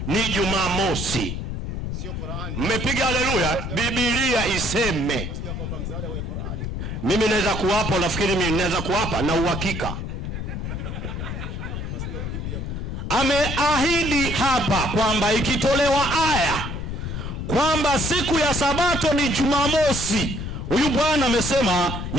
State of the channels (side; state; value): left; noise; rumble, 4 dB below the sound